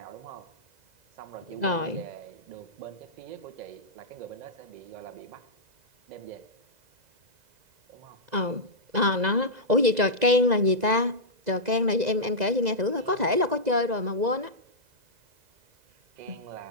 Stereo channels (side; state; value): left; late; 2.0 ms